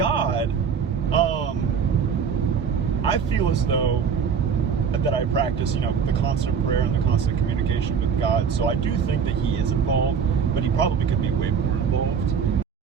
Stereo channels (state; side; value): quieter; left; 6.7 dB